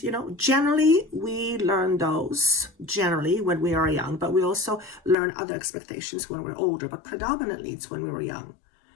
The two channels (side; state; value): right; drops out; at 5.2 s